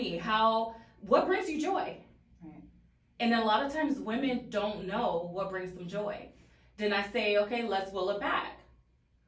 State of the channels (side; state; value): both; identical; correlation 1.00